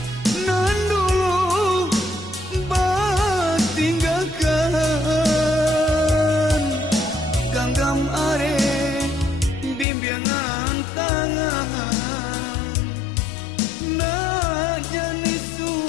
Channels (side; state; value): right; drops out; at 9.9 s